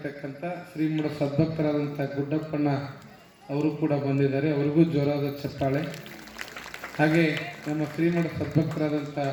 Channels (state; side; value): identical; both; correlation 1.00